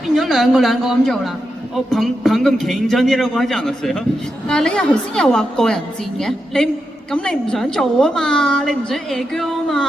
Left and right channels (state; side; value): normal; both; correlation 0.86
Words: 咗兩個咁做啦。 방금 개인전이라고 하지 않았어요? 但係你又頭先又話個人戰嘅，你唔想做啊嘛，你唔想 air girl 啊